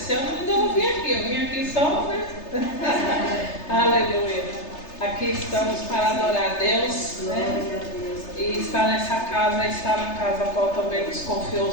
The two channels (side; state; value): right; late; 3.3 ms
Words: ano ainda não vim aqui, eu vim aqui só, né? Aleluia. Aqui estamos para adorar a Deus, né? E estar nessa casa, estar na casa a qual também nos confiou o